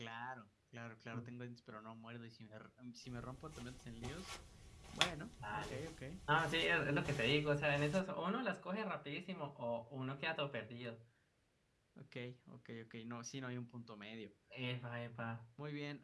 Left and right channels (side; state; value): both; identical; correlation 1.00